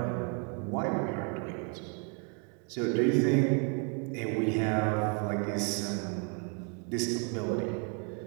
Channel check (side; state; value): left; quieter; 38.1 dB